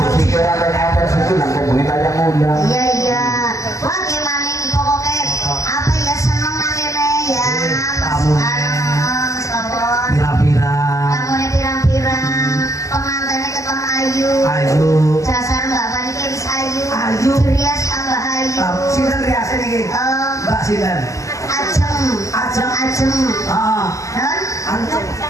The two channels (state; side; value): late; right; 0.16 ms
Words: ada nyamper situ nanti bengi aja ngundang. Iya, iya. Wah, gimana ini pokoknya apa ya seneng nangene ya. Kamu. Sabon. Pirang-pirang. Kamunya pirang-pirang. Pengantinnya ketemu ayu. Ayu. Dasar mbak Pani wis ayu. Ayu. Rias tambah ayu. Sinten riasnya nih? Mbak Sinten. Ajeng. Ajeng. Ajeng. Ah. Non? Antum.